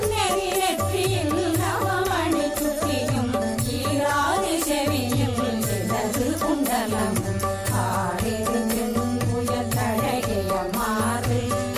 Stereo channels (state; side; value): identical; both; correlation 1.00